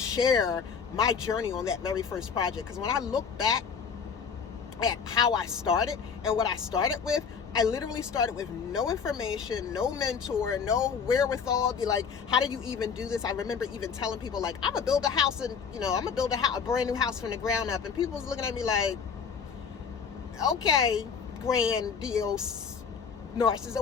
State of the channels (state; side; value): quieter; right; 6.3 dB